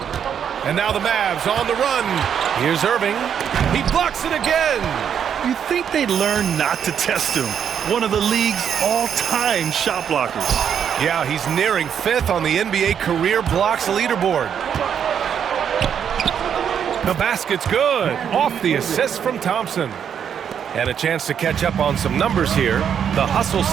And now the Mavs on the run. Here's Irving. He blocks it again. You'd think they'd learn not to test him. One of the league's all-time shot blockers. Yeah, he's nearing 5th on the NBA career blocks leaderboard. The basket's good. Off the assist from Thompson. And a chance to catch up on some numbers here. The hustle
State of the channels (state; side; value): quieter; left; 8.2 dB